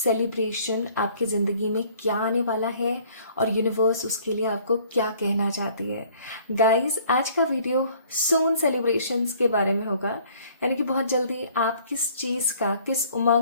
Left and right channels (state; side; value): inverted; both; correlation -0.57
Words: आपकी ज़िंदगी में क्या आने वाला है और यूनिवर्स उसके लिए आपको क्या कहना चाहती है। गाइस, आज का वीडियो सून सेलिब्रेशंस के बारे में होगा, यानी कि बहुत जल्दी आप किस चीज़ का, किस